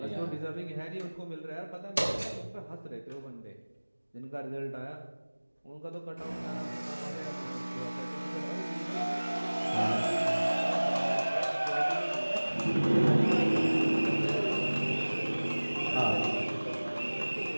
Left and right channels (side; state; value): both; inverted; correlation -1.00